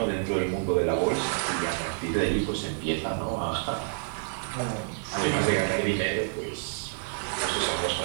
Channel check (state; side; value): silent; left; digital silence